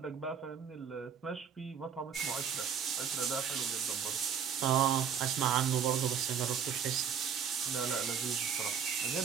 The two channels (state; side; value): quieter; left; 7.6 dB